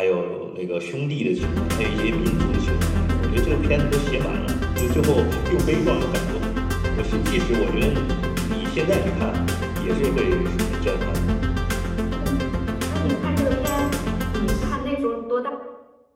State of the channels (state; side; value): identical; both; correlation 1.00